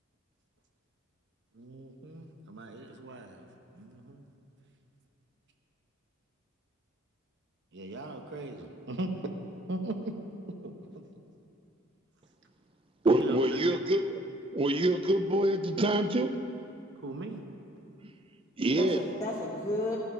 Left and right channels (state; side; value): normal; both; correlation 0.60